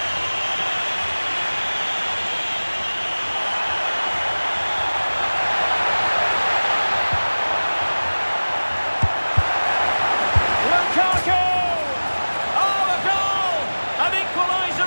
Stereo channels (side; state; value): both; inverted; correlation -1.00